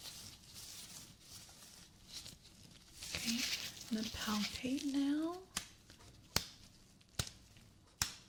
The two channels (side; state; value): both; identical; correlation 1.00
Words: Okay, I'm going to palpate now.